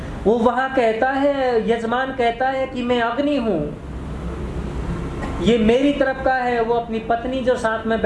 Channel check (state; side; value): identical; both; correlation 1.00